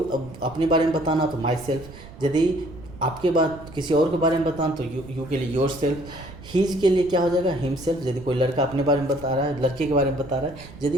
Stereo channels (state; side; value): noise; right; rumble, 17 dB below the sound